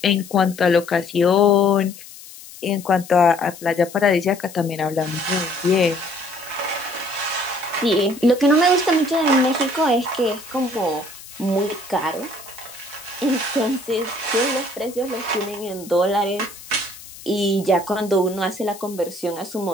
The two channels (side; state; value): left; noise; hiss, 17 dB below the sound